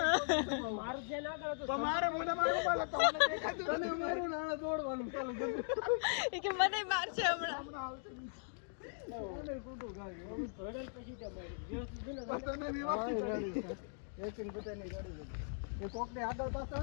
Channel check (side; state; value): right; silent; digital silence